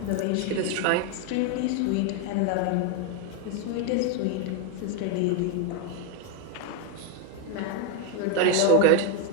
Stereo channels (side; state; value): both; different; correlation 0.01